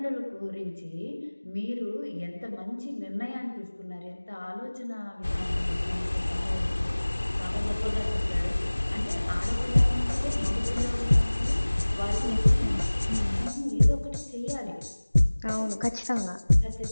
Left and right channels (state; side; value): inverted; both; correlation -1.00